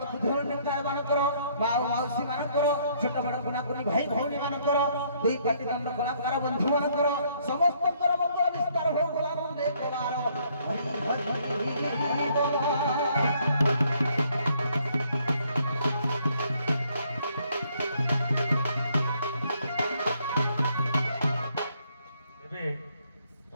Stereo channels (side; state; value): both; inverted; correlation -0.67